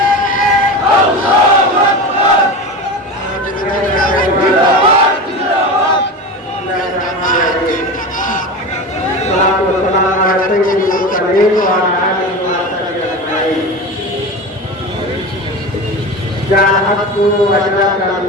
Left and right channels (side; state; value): both; normal; correlation 0.27